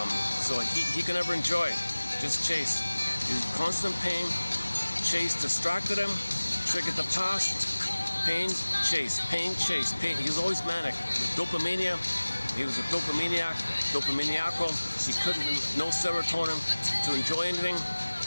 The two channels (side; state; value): both; inverted; correlation -1.00